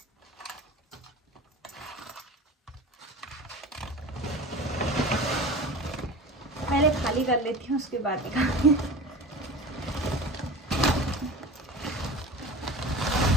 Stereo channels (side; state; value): both; normal; correlation 0.36